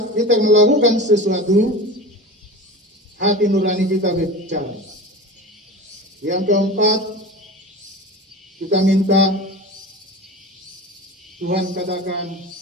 kita melakukan sesuatu, hati nurani kita berbicara. Yang keempat, kita minta Tuhan katakan,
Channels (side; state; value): both; normal; correlation 0.32